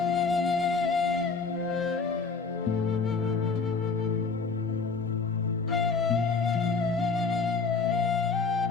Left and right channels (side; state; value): right; quieter; 4.7 dB